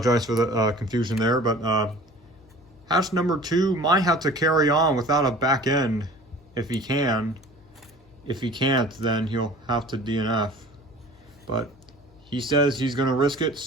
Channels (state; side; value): noise; left; hum, 28 dB below the sound